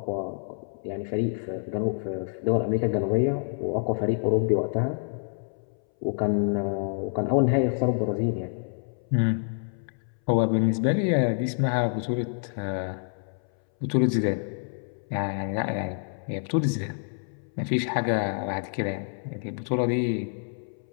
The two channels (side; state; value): right; silent; 60 dB below the other